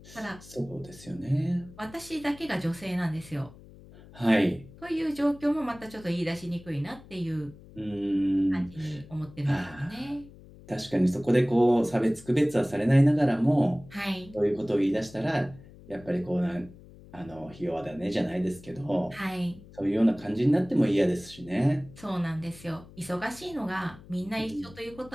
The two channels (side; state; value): left; noise; hum, 20 dB below the sound